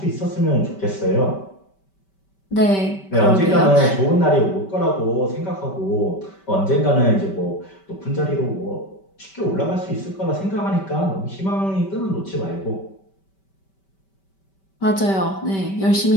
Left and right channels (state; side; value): late; right; 5.2 ms